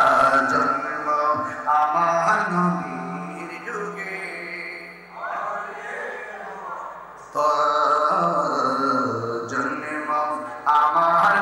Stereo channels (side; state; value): both; identical; correlation 1.00